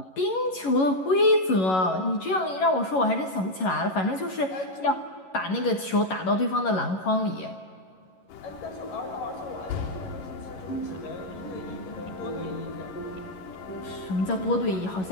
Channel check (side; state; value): right; late; 11 ms